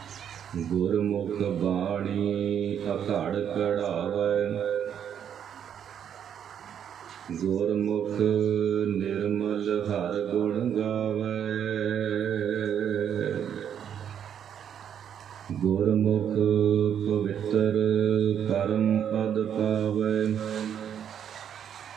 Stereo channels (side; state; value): left; quieter; 8.9 dB